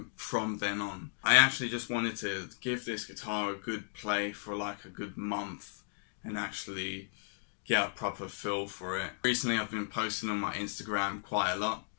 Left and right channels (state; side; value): silent; right; digital silence